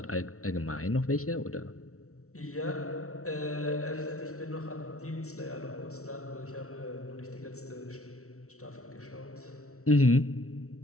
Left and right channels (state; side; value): late; right; 0.64 ms